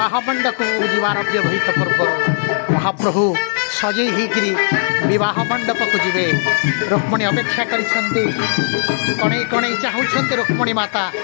मंडप जीवार अव्यवहित पूर्व महाप्रभु सजई होकरी विवाह मंडप को जीवे रुक्मणी अपेक्षा करिसेंती कणई कणई चाहूँच रुक्मणी माता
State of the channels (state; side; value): silent; right; digital silence